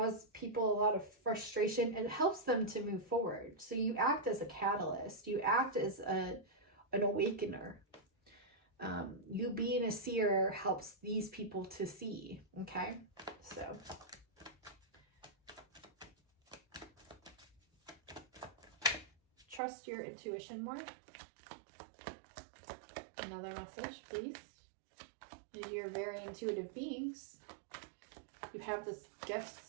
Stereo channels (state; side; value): drops out; left; at 19.6 s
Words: people a lot of frustration, it helps them to move forward. So you act as a catalyst. You act as an awakener. You being a seer helps these people to see. Okay. So trust your intuition more? Another message, please. You're very intuitive beings. You have this